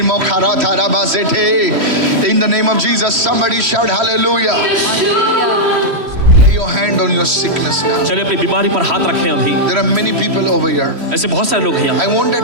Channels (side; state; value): left; late; 3.1 ms